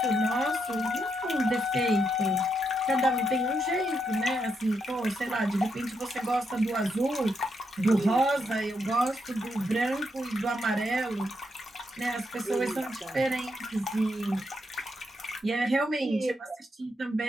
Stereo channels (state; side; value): normal; both; correlation 0.80